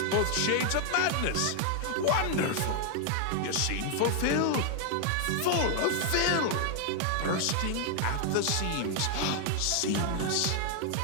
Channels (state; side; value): different; both; correlation 0.00